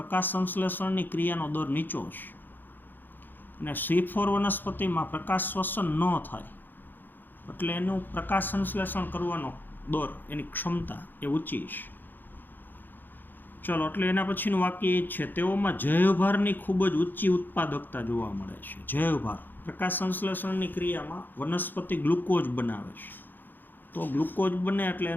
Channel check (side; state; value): right; late; 0.090 ms